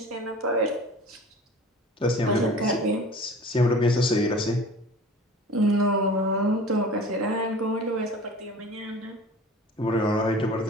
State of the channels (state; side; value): normal; both; correlation 0.41